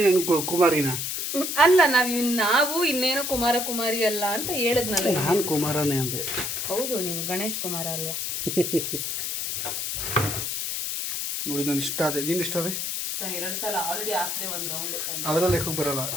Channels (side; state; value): left; noise; hiss, 2 dB below the sound